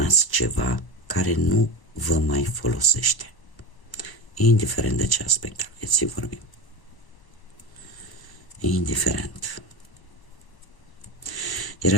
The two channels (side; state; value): right; late; 1.0 ms